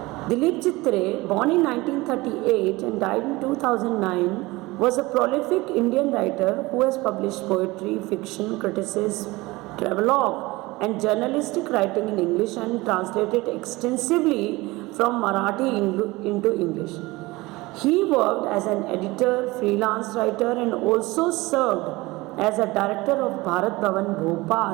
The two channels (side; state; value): left; quieter; 21.3 dB